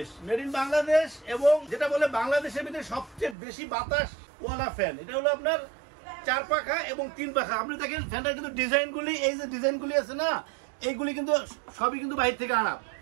এবং যেটা বলে বাংলাদেশের ভিতরে সবচেয়ে বেশি বাতাস ওয়ালা ফ্যান। এটা হলো আপনার 4 পাখা এবং 3 পাখা। আপনি দেখেন ফ্যানটার কিন্তু ডিজাইনগুলি, এই যে ডিজাইনগুলি আছে না, এইগুলি কিন্তু সবই কিন্তু বাইরে থেকে আনা,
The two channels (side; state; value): left; drops out; at 3.4 s